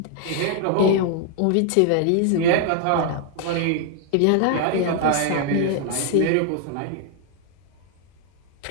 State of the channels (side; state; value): both; different; correlation 0.00